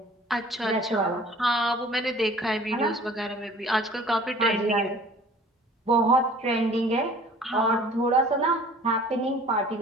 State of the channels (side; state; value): both; normal; correlation 0.49